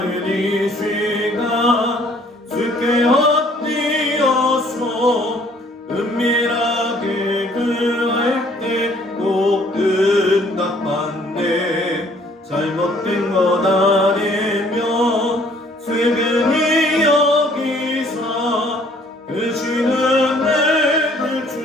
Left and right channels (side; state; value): both; normal; correlation 0.59